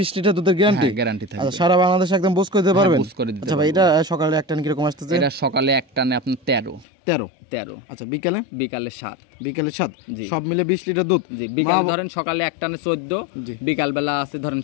লিটার দুধের গ্যারান্টি? গ্যারান্টি থাকবে। আচ্ছা সারা বাংলাদেশ একদম বুঝ করে দিতে পারবেন? বুঝ করে দিতে। আচ্ছা ভাই এটা সকালে এক টান কি রকম আসতেছে? এটা সকালে এক টানে আপনার 13। আচ্ছা বিকালে? বিকালে 7। বিকালে 7? সব মিলে 20 লিটার দুধ? জি বিকালে ধরেন সকালে এক টানে 14, বিকাল বেলা আছে ধরেন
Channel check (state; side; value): drops out; right; at 6.9 s